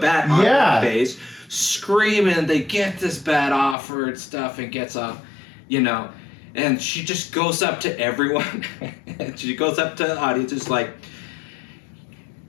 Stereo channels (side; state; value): right; drops out; at 3.8 s